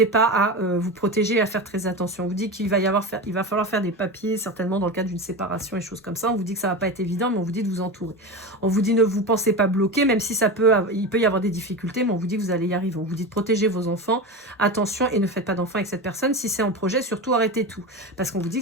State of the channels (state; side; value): normal; both; correlation 0.24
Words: pas à vous protéger et à faire très attention. On vous dit qu'il va falloir faire des papiers, certainement dans le cadre d'une séparation et choses comme ça. On vous dit que ça va pas être évident, mais on vous dit de vous entourer. On vous dit ne vous pensez pas bloqué, même si il peut y avoir des difficultés, mais on vous dit que vous allez y arriver. On vous dit de protéger vos enfants. Attention et ne faites pas d'enfants avec cette personne. Si c'est en projet, surtout arrêtez tout. Parce qu'on vous dit